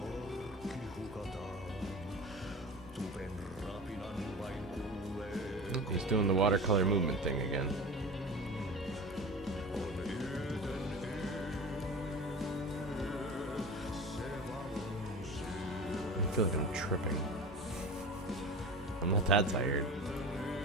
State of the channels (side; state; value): both; normal; correlation 0.33